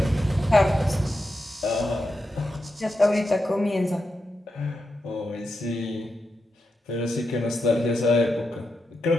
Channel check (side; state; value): both; normal; correlation 0.87